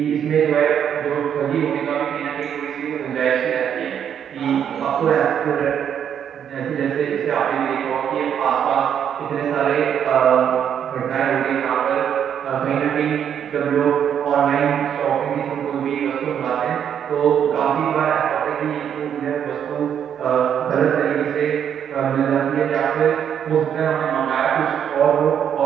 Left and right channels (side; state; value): left; quieter; 8.7 dB